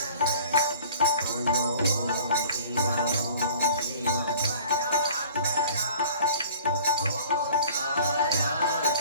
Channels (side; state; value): both; inverted; correlation -0.48